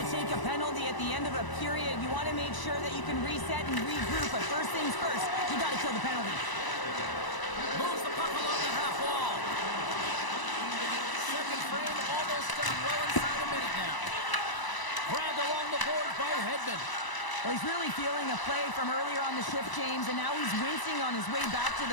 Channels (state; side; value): late; right; 1.0 ms